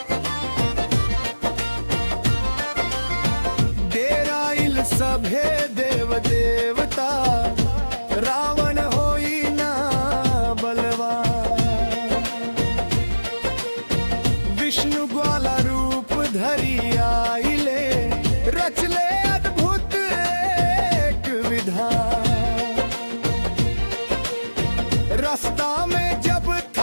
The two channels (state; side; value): inverted; both; correlation -1.00